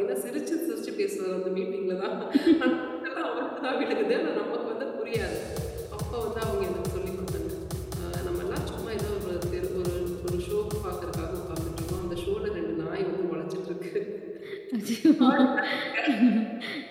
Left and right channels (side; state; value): both; identical; correlation 1.00